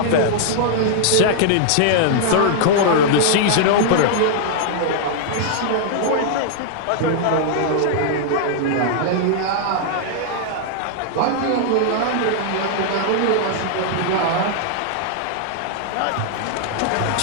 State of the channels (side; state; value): both; different; correlation -0.01